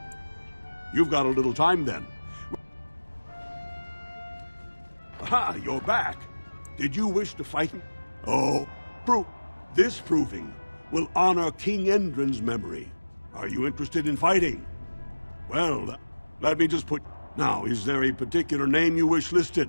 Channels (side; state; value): both; inverted; correlation -1.00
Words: You've got a little time then. Aha, you're back. Did you wish to fight him? Oh, this proving will honor King Endrin's memory. Are you interested in fighting? Well, let me just put... Now, is there a particular name you wish listed?